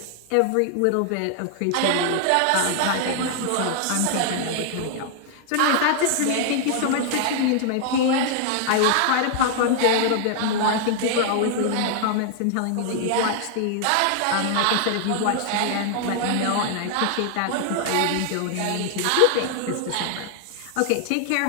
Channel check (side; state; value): both; different; correlation 0.00